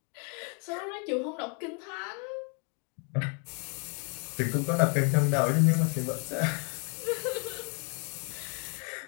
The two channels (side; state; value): right; quieter; 38.0 dB